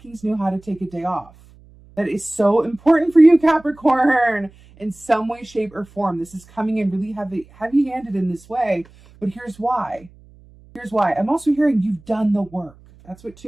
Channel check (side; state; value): right; noise; hum, 26 dB below the sound